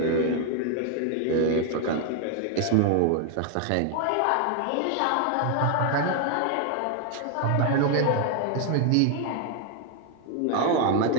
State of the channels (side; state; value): both; different; correlation 0.00